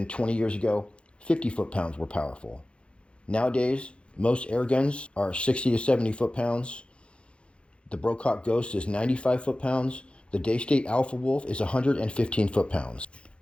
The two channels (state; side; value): late; right; 0.058 ms